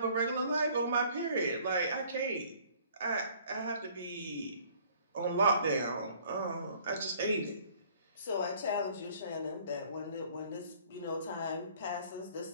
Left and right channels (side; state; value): both; inverted; correlation -0.56